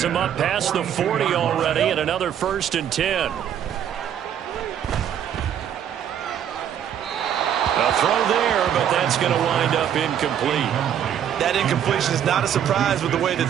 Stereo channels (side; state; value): left; quieter; 9.5 dB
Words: him up past the 40 already, and another 1st and 10. A throw there, but that's going to wind up incomplete. That incompletion is not a surprise with the way that